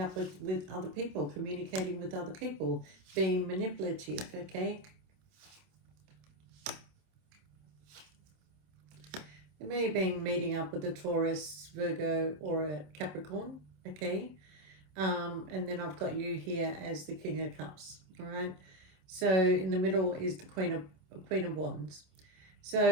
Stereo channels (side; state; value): left; late; 27 ms